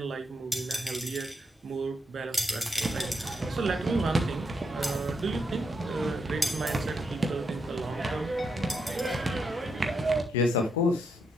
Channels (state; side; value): normal; both; correlation 0.81